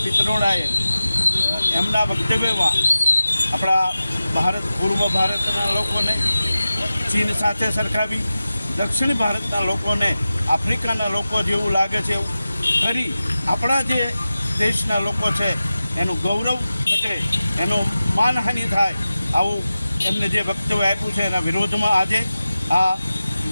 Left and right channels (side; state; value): both; inverted; correlation -0.94